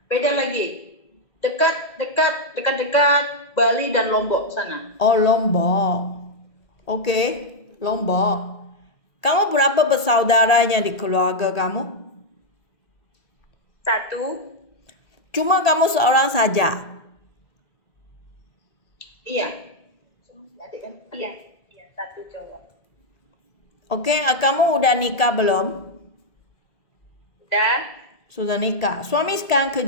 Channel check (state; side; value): late; right; 1.4 ms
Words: Beda lagi. Dekat Bali dan Lombok sana. Oh, Lombok. Okey, Lombok. Kamu berapa bersaudaranya di keluarga kamu? 1. Cuma kamu seorang saja? Iya. Adik kan? Iya, 1 cowok. Okey, kamu udah nikah belum? Sudah nikah. Suami sekarang